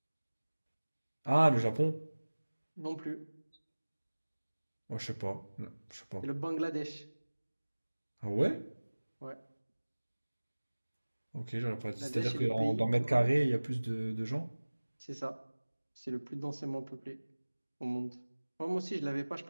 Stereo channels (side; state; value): both; inverted; correlation -1.00